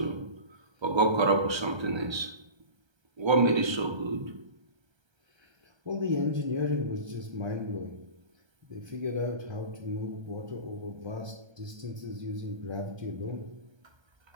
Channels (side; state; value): left; late; 1.3 ms